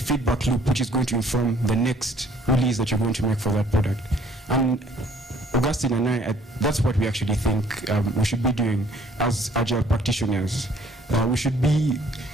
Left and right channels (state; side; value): normal; both; correlation 0.58